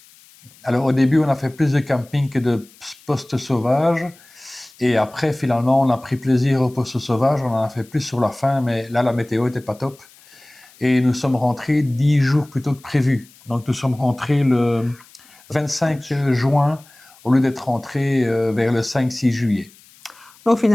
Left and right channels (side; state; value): left; noise; hiss, 26 dB below the sound